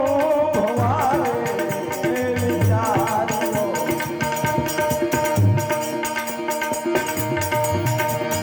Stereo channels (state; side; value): identical; both; correlation 1.00